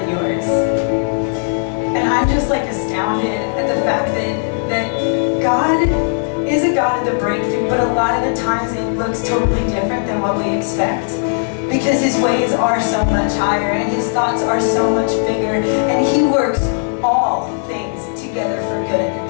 yours. And I'm just like astounded at the fact that God is a God of the breakthrough, but a lot of the times it looks totally different than what we expect. Because his ways are so much higher, and his thoughts are so much bigger, and he works all things together for good.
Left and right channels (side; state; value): right; silent; digital silence